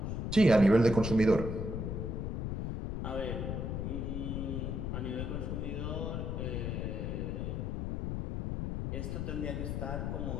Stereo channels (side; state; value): left; noise; rumble, 2 dB below the sound